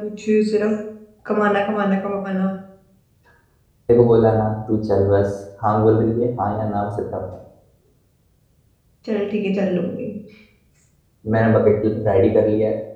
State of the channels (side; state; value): both; identical; correlation 1.00